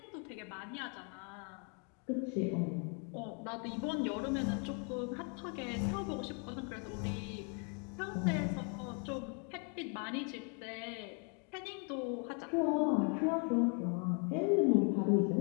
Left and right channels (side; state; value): right; quieter; 38.4 dB